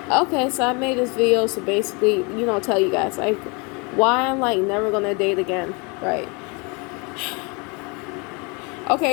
Okay, so I made this video to basically, tell you guys like why I'm like never gonna date again, right?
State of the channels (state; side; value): quieter; right; 30.6 dB